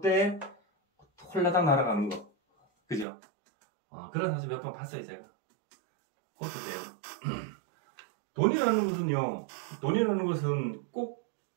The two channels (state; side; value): drops out; left; at 3.1 s